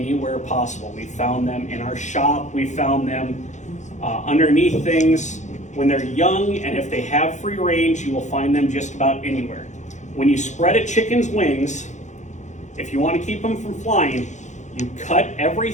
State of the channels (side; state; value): right; late; 0.35 ms